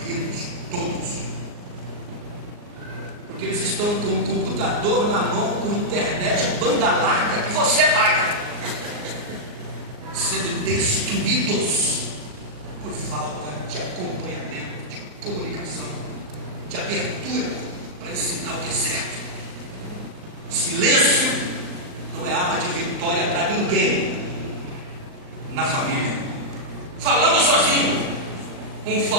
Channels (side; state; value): left; late; 39 ms